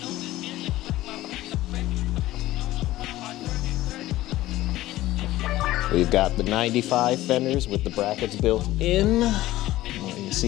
We've got the 95 fenders with the brackets built in. You can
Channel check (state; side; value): quieter; right; 16.0 dB